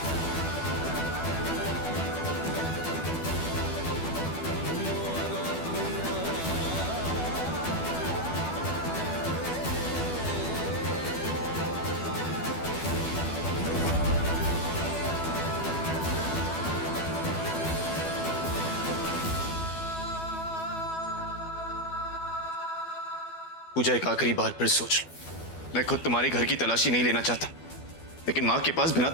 पूजा एक आखिरी बार फिर सोच लो। मैं खुद तुम्हारे घर की तलाशी नहीं लेना चाहता, लेकिन मां के पास बिना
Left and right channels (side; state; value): right; late; 12 ms